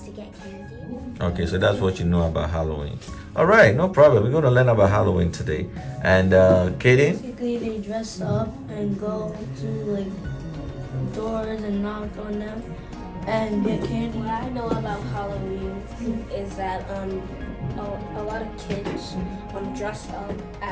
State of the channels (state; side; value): identical; both; correlation 1.00